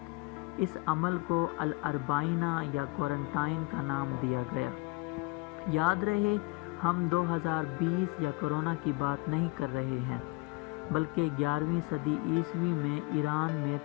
اس عمل کو الاربعینہ یا کوارنٹائن کا نام دیا گیا۔ یاد رہے، ہم 2020 یا کورونا کی بات نہیں کر رہے ہیں، بلکہ 11ویں صدی عیسوی میں ایران میں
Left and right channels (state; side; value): quieter; right; 25.8 dB